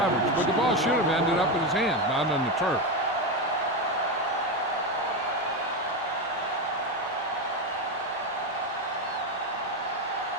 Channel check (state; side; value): normal; both; correlation 0.13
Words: but the ball should have ended up in his hands, not on the turf.